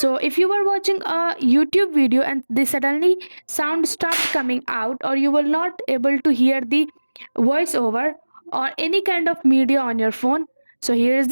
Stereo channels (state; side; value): inverted; both; correlation -1.00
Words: if you were watching a YouTube video and the suddenly sound stopped coming out, or you were not able to hear the voiceover or any kind of media on your phone, so here is